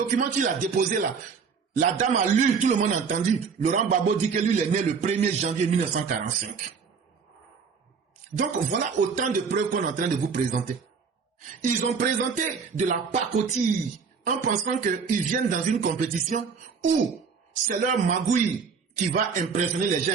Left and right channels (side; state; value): left; quieter; 5.7 dB